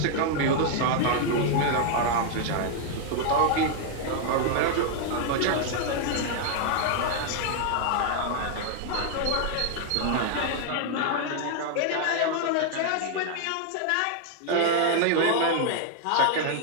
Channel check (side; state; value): both; different; correlation 0.00